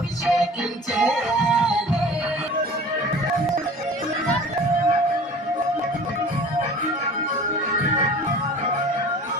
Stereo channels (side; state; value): both; normal; correlation 0.43